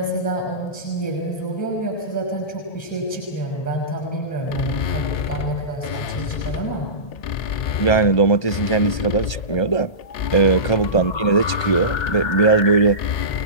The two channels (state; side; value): late; right; 1.3 ms